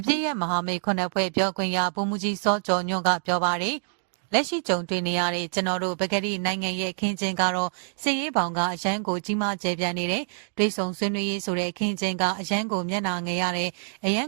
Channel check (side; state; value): left; silent; 61 dB below the other